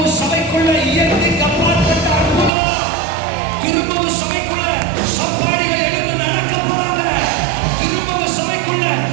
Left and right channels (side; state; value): left; drops out; at 2.5 s